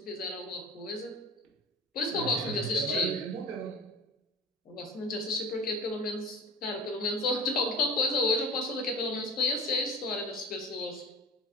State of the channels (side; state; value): both; normal; correlation 0.37